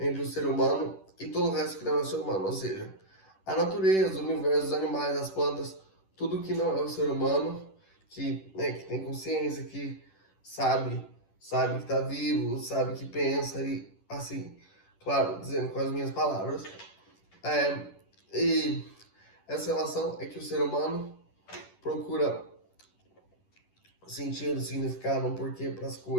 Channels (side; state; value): right; late; 10 ms